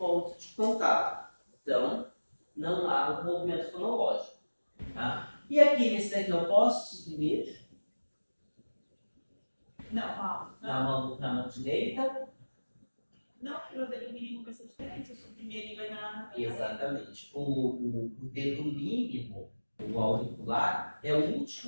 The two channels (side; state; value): both; inverted; correlation -1.00